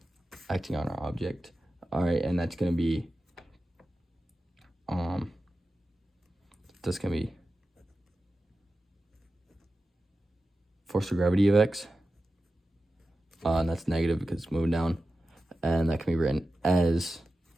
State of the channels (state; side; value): normal; both; correlation 0.93